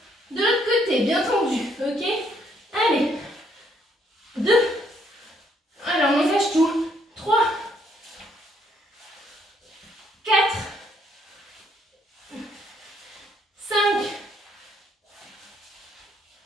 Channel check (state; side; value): normal; both; correlation 0.69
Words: de l'autre côté, bien tendue. Ok? Allez. 2. Alors, on engage tout. 3. 4. 5.